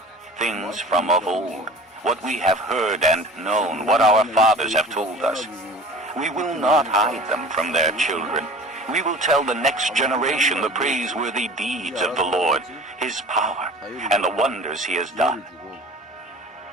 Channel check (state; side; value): normal; both; correlation 0.42